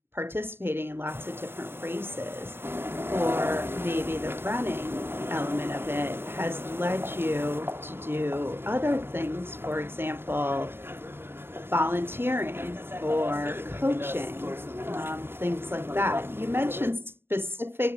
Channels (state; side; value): late; left; 0.11 ms